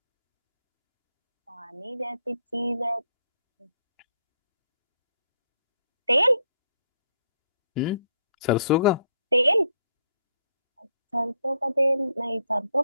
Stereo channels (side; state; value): both; inverted; correlation -0.72